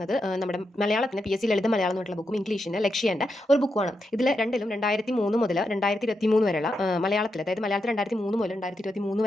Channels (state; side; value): normal; both; correlation 0.85